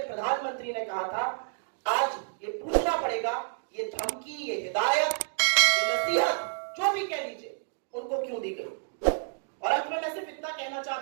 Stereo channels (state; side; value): silent; left; digital silence